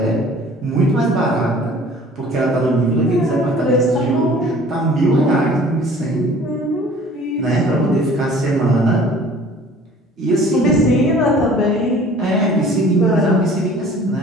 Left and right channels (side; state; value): both; normal; correlation 0.49